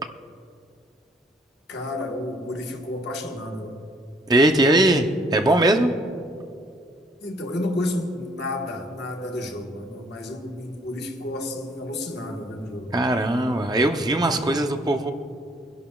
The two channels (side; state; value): both; normal; correlation 0.64